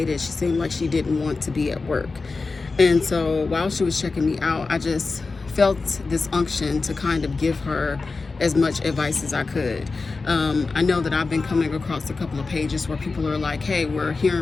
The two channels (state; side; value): quieter; right; 4.0 dB